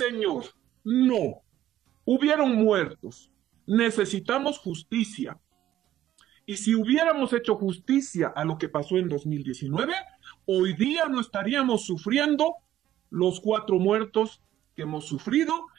no. Hubieron muertos. Necesitamos justicia. Y si hubiéramos hecho justicia a lo que pasó en 2019, hoy día no estaríamos sufriendo los 4 muertos que hemos sufrido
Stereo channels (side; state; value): left; quieter; 12.7 dB